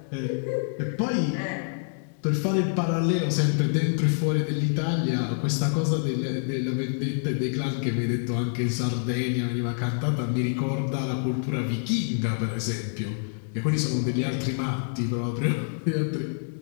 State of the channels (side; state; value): right; silent; digital silence